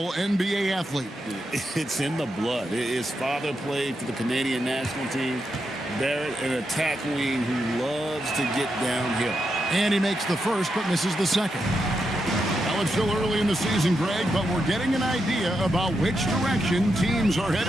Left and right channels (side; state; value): both; normal; correlation 0.85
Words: NBA athlete. It's in the blood. His father played for the Canadian national team. Barrett, an attack wing who loves to get downhill. And he makes the first, but misses the second. Now, it's still early in the season, Greg, but we're getting an idea about which direction teams are